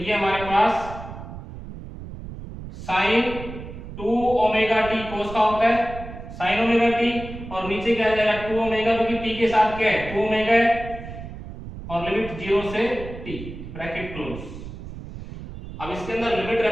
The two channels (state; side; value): noise; right; rumble, 11 dB below the sound